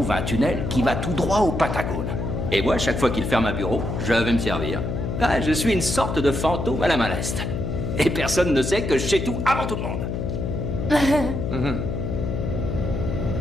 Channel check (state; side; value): noise; left; hum, 3 dB below the sound